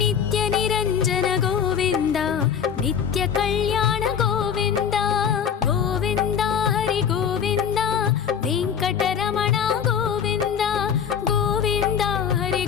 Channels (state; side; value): quieter; right; 7.8 dB